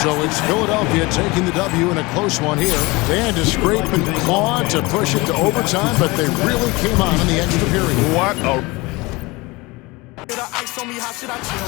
So it's Philadelphia taking the W in a close one here. They had to scrape and claw to push it to overtime, but they really came on in the extra period. What a... Ice on me, how should I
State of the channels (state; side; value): quieter; right; 23.7 dB